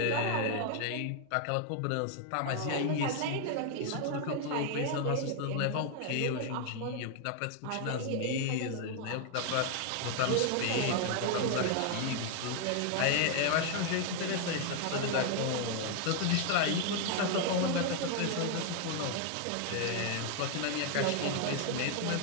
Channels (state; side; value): different; both; correlation 0.00